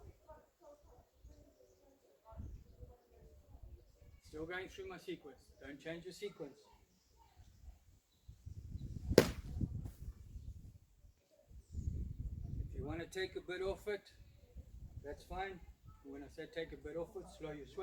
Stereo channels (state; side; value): identical; both; correlation 1.00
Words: Still going through my sequence. Don't change your sequence. If you want to take a bit off it, that's fine. When I say take a bit off it, slow your